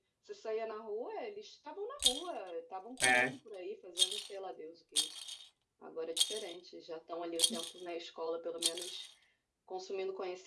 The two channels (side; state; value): both; identical; correlation 1.00